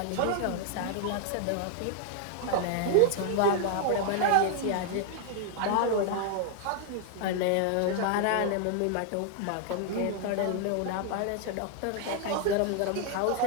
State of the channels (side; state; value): both; different; correlation 0.00